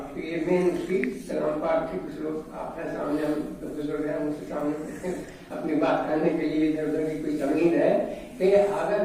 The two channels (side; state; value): both; identical; correlation 1.00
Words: تو یہ مین اس کی کلام پاک کی کچھ لوگ آپ کے سامنے, ہم بزرگ ہیں, ان کے سامنے اپنی بات کرنے کے لیے ادھر ادھر کی کوئی تمہید ہے کہ